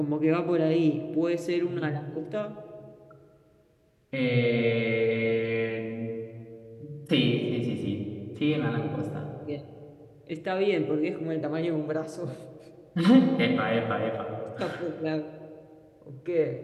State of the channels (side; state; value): both; identical; correlation 1.00